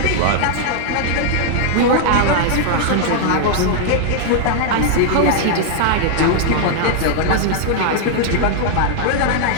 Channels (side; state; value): both; different; correlation 0.00